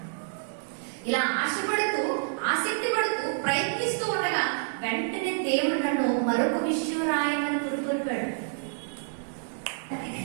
ఇలా ఆశపడుతూ ఆసక్తి పడుతూ ప్రయత్నిస్తూ ఉండగా వెంటనే దేవుడు నన్ను మరొక విషయం రాయమని పురుకొల్పాడు.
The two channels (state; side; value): silent; left; digital silence